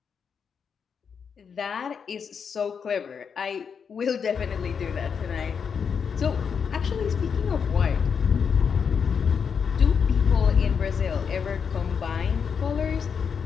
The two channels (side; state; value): right; quieter; 6.6 dB